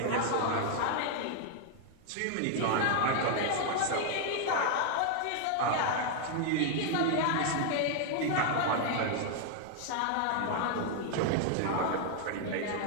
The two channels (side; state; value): both; different; correlation 0.00